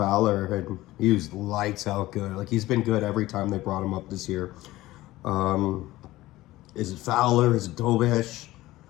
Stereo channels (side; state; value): right; quieter; 17.3 dB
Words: and he was lights out good. Like, he's been good every time they brought him up this year. Is it Fowler? Is it Dobish?